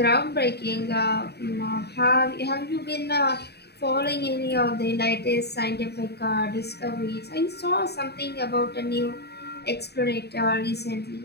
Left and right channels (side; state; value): right; late; 0.48 ms